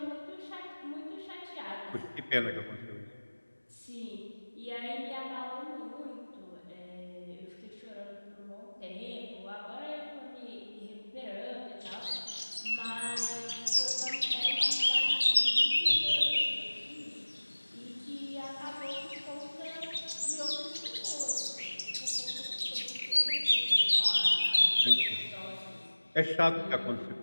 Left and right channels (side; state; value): both; inverted; correlation -1.00